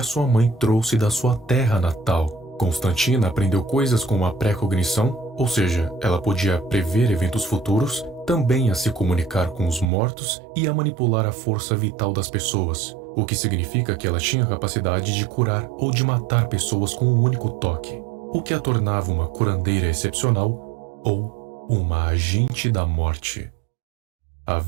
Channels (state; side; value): drops out; left; at 9.9 s